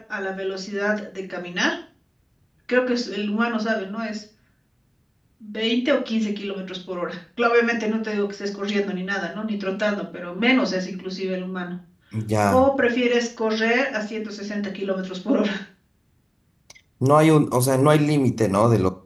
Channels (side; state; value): both; identical; correlation 1.00